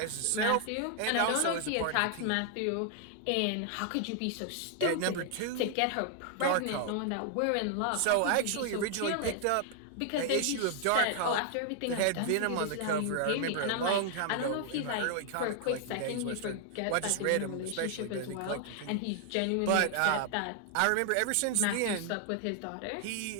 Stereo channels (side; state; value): both; different; correlation 0.00